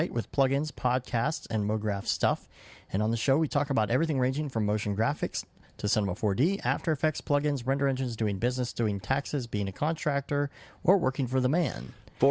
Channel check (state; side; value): identical; both; correlation 1.00